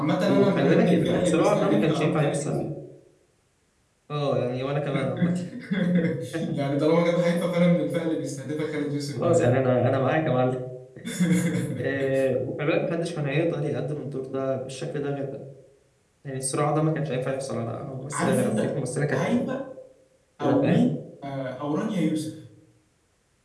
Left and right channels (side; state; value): both; identical; correlation 1.00